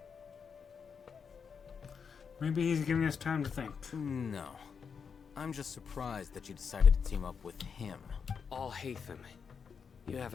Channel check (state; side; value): quieter; right; 6.3 dB